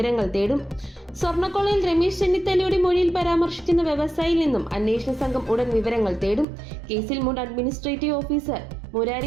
തേടും. സ്വർണ്ണക്കൊള്ളയിൽ രമേശ് ചെന്നിത്തലയുടെ മൊഴിയിൽ പരാമർശിക്കുന്ന വ്യവസായിയിൽ നിന്നും അന്വേഷണ സംഘം ഉടൻ വിവരങ്ങൾ തേടും. കേസിൽ മുൻ അഡ്മിനിസ്ട്രേറ്റീവ് ഓഫീസർ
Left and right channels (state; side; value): drops out; left; at 6.5 s